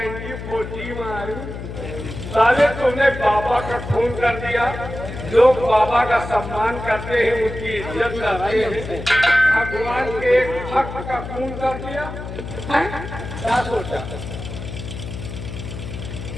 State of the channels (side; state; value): left; noise; hum, 9 dB below the sound